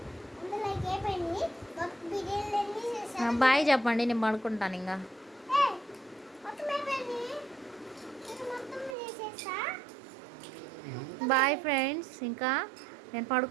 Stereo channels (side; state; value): left; drops out; at 9.0 s